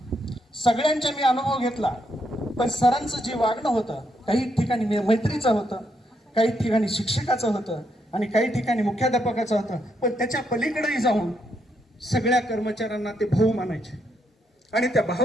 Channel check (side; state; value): both; normal; correlation 0.78